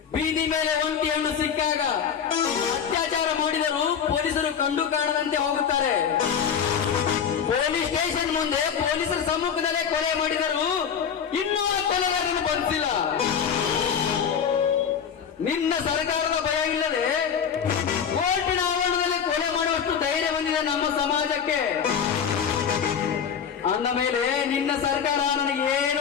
ಬೀದಿ ಮೇಲೆ ಒಂಟಿ ಹಣ್ಣು ಸಿಕ್ಕಾಗ ಅತ್ಯಾಚಾರ ಮಾಡಿದರೂ ಪೊಲೀಸರು ಕಂಡು ಕಾಣದಂತೆ ಹೋಗುತ್ತಾರೆ. ಪೊಲೀಸ್ ಸ್ಟೇಷನ್ ಮುಂದೆ ಪೊಲೀಸರ ಸಮ್ಮುಖದಲ್ಲೇ ಕೊಲೆ ಮಾಡಿದರೂ ಇನ್ನೂ ಆ ಕೊಲೆಗಾರನ್ನು ಬಂಧಿಸಿಲ್ಲ. ನಿನ್ನ ಸರ್ಕಾರದ ಭಯ ಇಲ್ಲದೆ ಕೋರ್ಟಿನ ಆವರಣದಲ್ಲಿ ಕೊಲೆ ಮಾಡುವಷ್ಟು ಧೈರ್ಯ ಬಂದಿದೆ ನಮ್ಮ ಸಮಾಜಕ್ಕೆ. ಅಂದ ಮೇಲೆ ನಿನ್ನ ಸರ್ಕಾರ ನನಗೆ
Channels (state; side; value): quieter; right; 7.6 dB